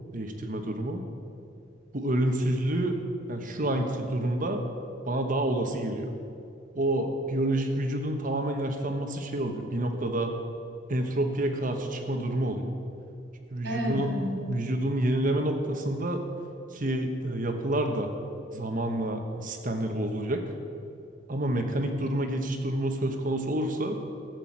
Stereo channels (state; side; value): normal; both; correlation 0.59